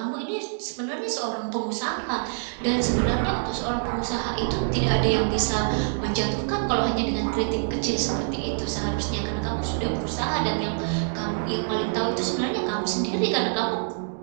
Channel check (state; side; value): silent; left; digital silence